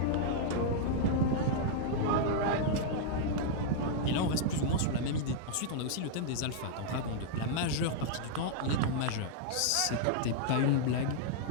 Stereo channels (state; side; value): different; both; correlation -0.01